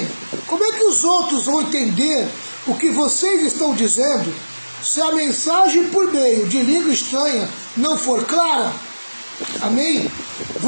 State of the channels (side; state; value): both; inverted; correlation -1.00